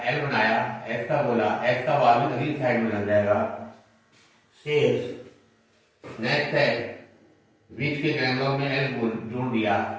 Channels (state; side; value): identical; both; correlation 1.00